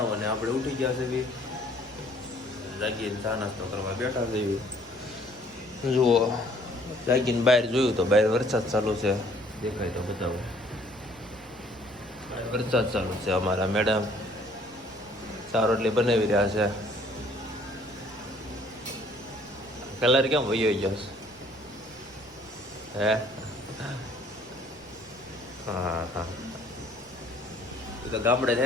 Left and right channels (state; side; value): noise; right; rumble, 26 dB below the sound